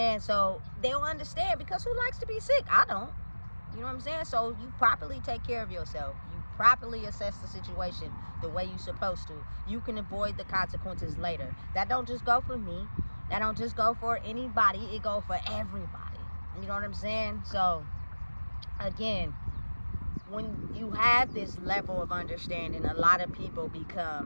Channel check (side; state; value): both; inverted; correlation -1.00